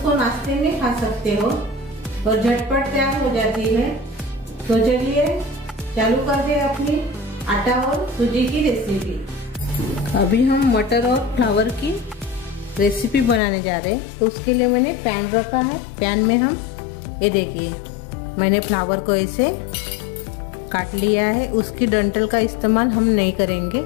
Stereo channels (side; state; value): right; drops out; at 13.4 s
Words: नाश्ते में खा सकते हो और झटपट तैयार हो जाती है। तो चलिए चालू करते हैं अपनी आटा और सूजी की रेसिपी। अभी हम मटर और फ्लावर की रेसिपी बनाने जा रहे हैं। तो उसके लिए मैंने पैन रखा है। पैन में हम ये देखिए, मैंने फ्लावर को ऐसे काट लिया है। उसकी डंठल का इस्तेमाल हम नहीं करेंगे।